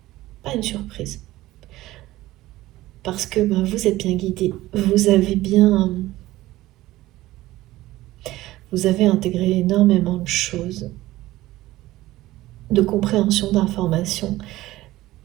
pas une surprise. Parce que vous êtes bien guidé, vous avez intégré énormément de choses, de compréhension d'informations.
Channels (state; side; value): quieter; left; 16.8 dB